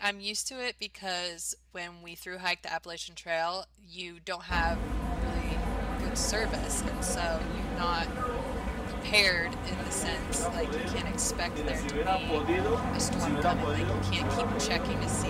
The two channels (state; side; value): identical; both; correlation 1.00